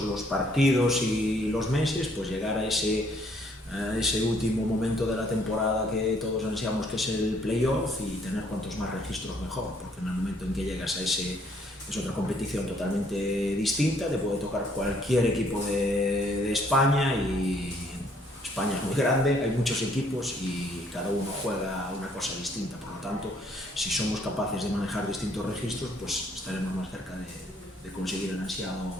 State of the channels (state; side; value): normal; both; correlation 0.65